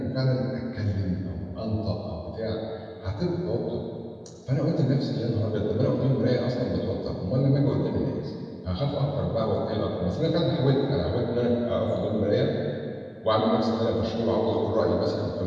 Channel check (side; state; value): both; identical; correlation 1.00